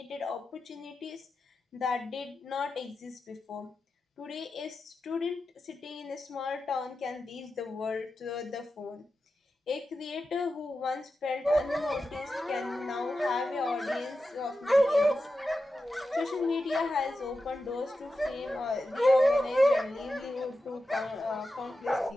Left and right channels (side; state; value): both; normal; correlation 0.91